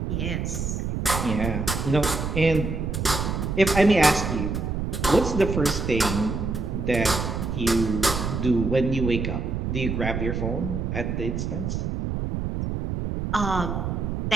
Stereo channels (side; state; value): right; noise; rumble, 2 dB below the sound